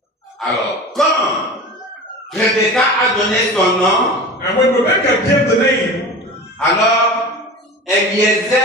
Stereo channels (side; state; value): both; normal; correlation 0.34